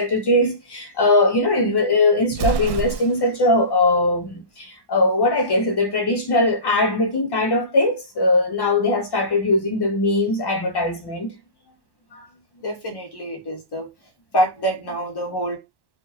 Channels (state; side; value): late; right; 1.1 ms